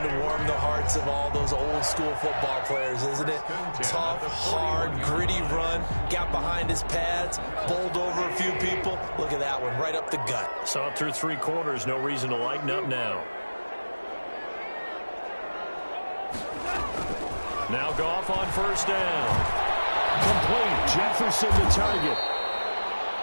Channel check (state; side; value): inverted; both; correlation -1.00